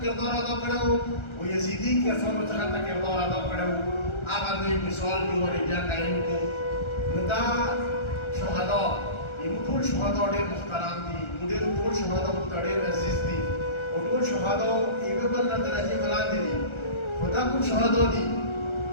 کردار ادا کړو او یزدي کسانو څنګه د کردار ادا کړو هغه دوی مثال دی ورې بیا قایم کړو نو دا شهدا یو ټول شهدا ډېر محترم دي ډېر ټول شهدا ډېر عزیز دي او ټول شهدا یو بل نه درجه بلاندې دي خدا کوم شهدا دي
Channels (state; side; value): late; right; 1.3 ms